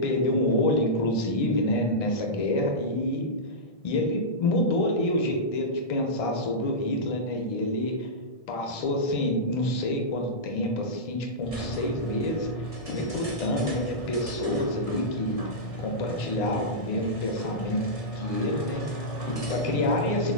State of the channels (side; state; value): right; late; 1.6 ms